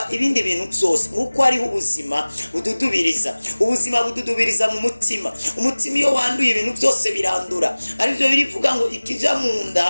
ibindi bintu byose, kuko hariho ubuzima bududubiriza. Ubuzima bududubiriza mu mutima. Umutima iyo wanduye ibintu byose birandura. Arivyo birivuga ngo ikija mu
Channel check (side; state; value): both; inverted; correlation -1.00